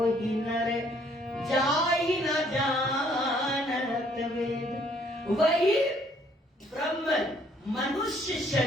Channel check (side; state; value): both; normal; correlation 0.64